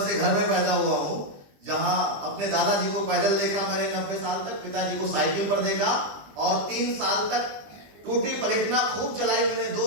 घर में पैदा हुआ हूं जहां अपने दादाजी को पैदल देखा मैंने 90 साल तक, पिताजी को साइकिल पर देखा, और 3 साल तक टूटी प्लेटिना खूब चलाई मैंने,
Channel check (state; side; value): late; left; 20 ms